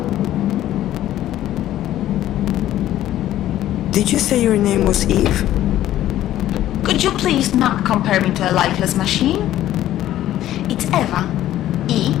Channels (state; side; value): quieter; right; 13.2 dB